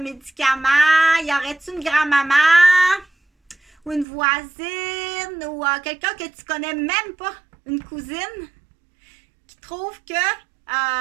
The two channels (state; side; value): drops out; left; at 4.0 s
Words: Y aurait-tu une grand-maman ou une voisine ou quelqu'un que tu connais même pas, une cousine, qui trouve que...